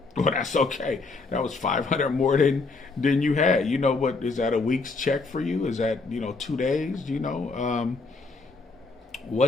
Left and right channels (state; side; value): quieter; right; 3.8 dB